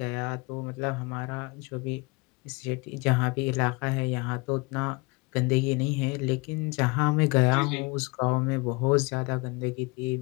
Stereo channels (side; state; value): right; quieter; 27.5 dB